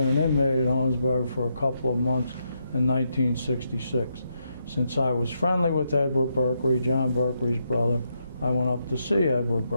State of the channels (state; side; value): inverted; both; correlation -0.80